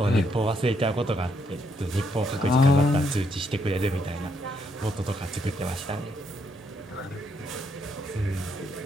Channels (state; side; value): normal; both; correlation 0.74